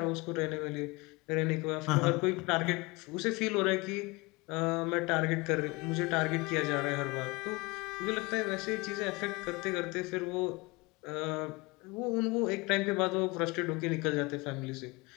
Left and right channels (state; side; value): quieter; right; 25.0 dB